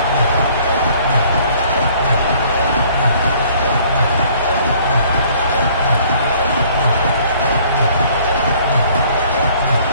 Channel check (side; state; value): both; inverted; correlation -0.58